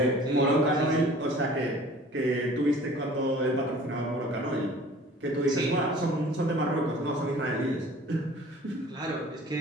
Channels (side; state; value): both; normal; correlation 0.48